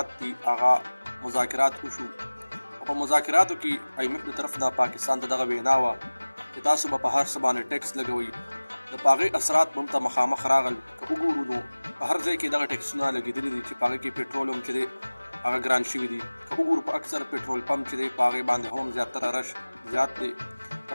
دي هغه مذاکرات وشو او په مذاکراتو کې IMF د طرف نه پاکستان ته دغه وینا وه چې تاسو به په هر څه باندې ټیکس لګوئ. د په هغې اثرات به هم ته مخامخ راغل. که وګورو نو په هر ځای کې دغه ټیکسونه لګېدلي دي چې په هغې کې پېټرول هم چې دی هغه ګران شوي دي. که وګورو په اکثر پېټرول پمپ چې دی په هغې باندې هم زیاتره رش زیات دی. که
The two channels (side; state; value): both; inverted; correlation -1.00